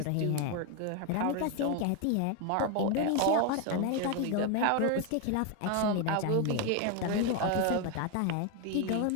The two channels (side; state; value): both; different; correlation 0.01